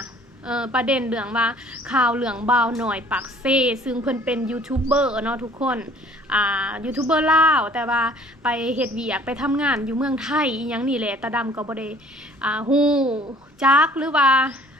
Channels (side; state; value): both; normal; correlation 0.54